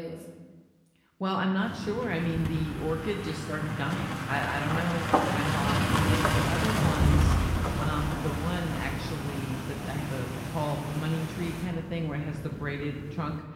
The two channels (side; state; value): both; identical; correlation 1.00